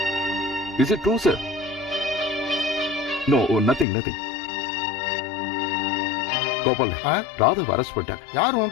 Is it true, sir? No, nothing. Gopal, ராதாவை அரெஸ்ட் பண்ணிட்டாங்க. யார்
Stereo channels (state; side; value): drops out; right; at 3.9 s